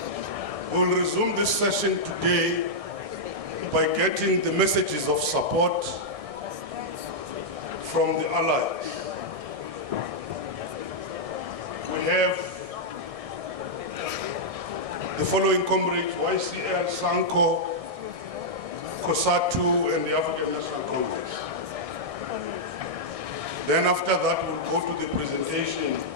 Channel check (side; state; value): left; late; 1.6 ms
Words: We'll resume this session today by getting the messages of support from the allies. We have the following comrades: YCL, Sanco, Cosatu, and the African National Congress. Then after that, we'll go to the presentation